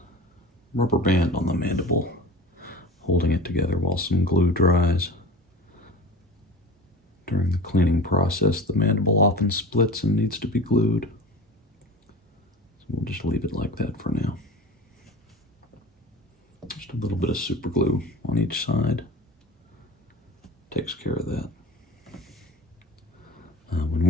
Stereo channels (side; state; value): both; normal; correlation 0.35